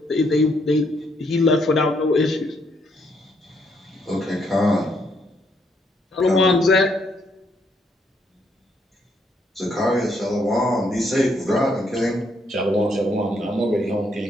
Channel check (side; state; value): both; normal; correlation 0.73